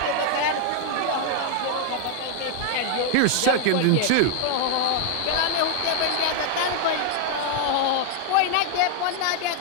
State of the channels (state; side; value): different; both; correlation 0.00